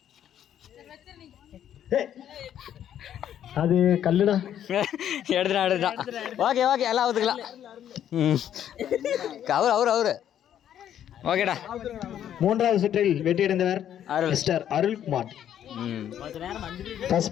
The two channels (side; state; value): right; quieter; 10.3 dB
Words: அது கல்லுடா. எடுத்துட்டான். ஓகே எல்லாம் ஒத்துக்கலாம். அவரு ஓகேடா. மூன்றாவது சுற்றில் வெற்றியடைந்தவர் மிஸ்டர் அருள்குமார். ஃபர்ஸ்ட்